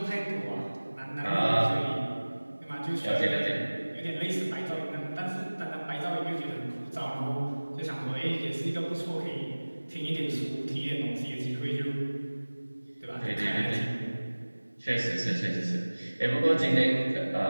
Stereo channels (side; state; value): both; inverted; correlation -1.00